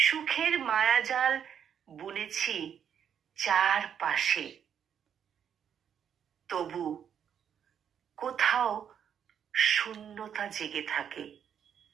মায়াজাল বুনেছি চারপাশে, তবু কোথাও শূন্যতা জেগে থাকে।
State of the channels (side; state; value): left; quieter; 8.4 dB